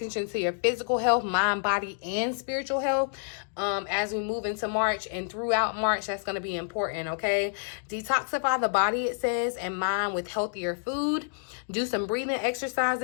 to your physical health, mind, body, and spiritual health. As we move into March and throughout March, that's going to be important. Okay, detoxify the body, it says, and mind with healthier food. Do some breathing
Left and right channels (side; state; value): right; silent; digital silence